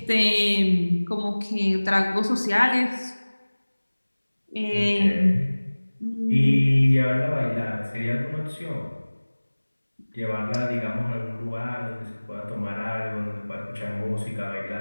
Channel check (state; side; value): inverted; both; correlation -1.00